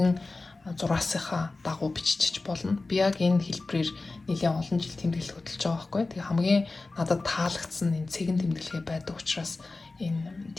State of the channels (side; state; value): right; quieter; 3.4 dB